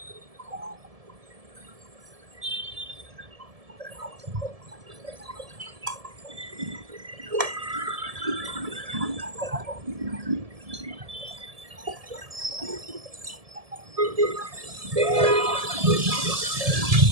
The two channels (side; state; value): left; late; 1.7 ms